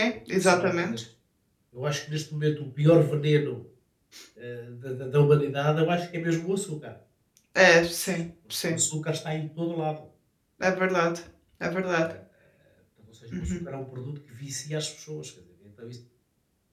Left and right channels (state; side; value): identical; both; correlation 1.00